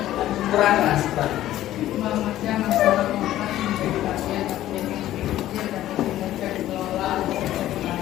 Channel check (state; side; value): quieter; right; 13.7 dB